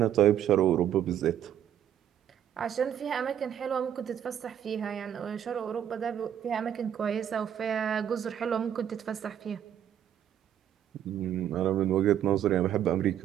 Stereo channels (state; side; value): quieter; left; 10.0 dB